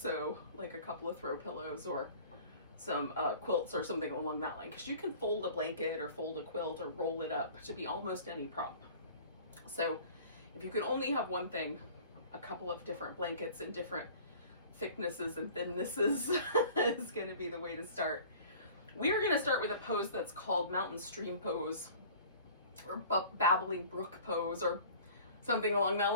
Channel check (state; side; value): inverted; both; correlation -0.46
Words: like a couple of throw pillows or some quilts or something along that line, because you can fold a blanket or fold a quilt or roll it up to be almost any prop. So if you can only have one thing, a couple of different blankets in different thicknesses and thinnesses is going to be the way to start. We are going to start with a pose that's called Mountain Stream Pose or Babbling Brook Pose or something along that